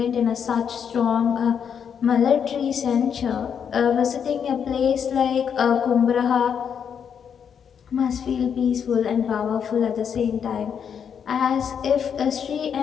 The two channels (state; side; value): quieter; right; 7.6 dB